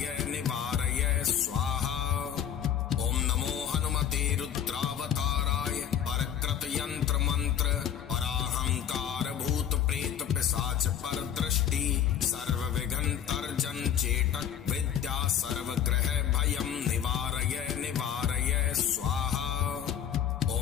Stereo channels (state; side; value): quieter; right; 9.2 dB